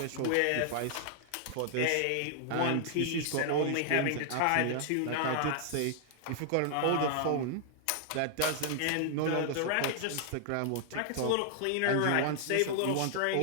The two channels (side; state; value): both; different; correlation -0.01